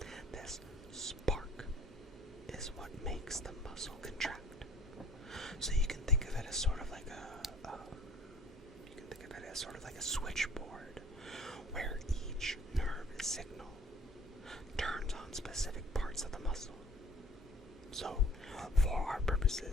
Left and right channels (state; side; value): normal; both; correlation 0.52